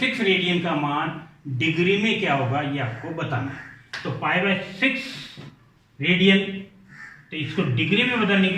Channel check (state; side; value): identical; both; correlation 1.00